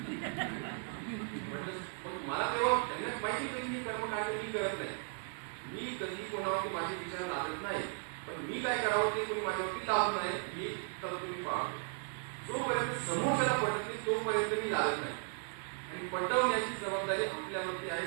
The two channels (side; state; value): left; silent; 54 dB below the other